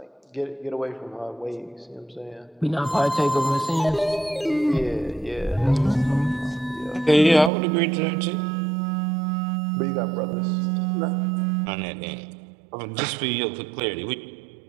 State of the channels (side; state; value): left; drops out; at 7.5 s